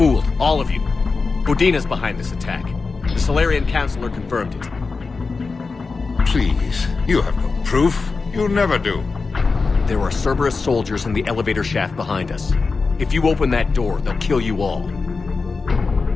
all of you. Udina's behind this attack. The Solarian Councilor confirmed it. Please, you have no proof. You never do. There are Cerberus soldiers in the elevator shaft behind us. If you open that door, they'll kill you all.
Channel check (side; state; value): right; quieter; 4.3 dB